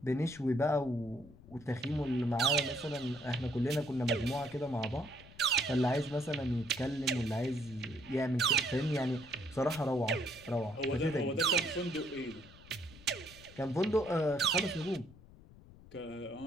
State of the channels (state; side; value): noise; left; rumble, 21 dB below the sound